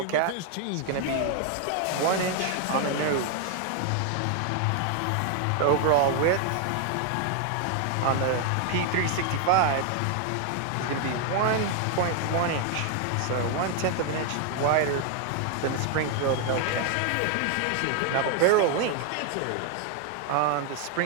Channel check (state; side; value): different; both; correlation 0.00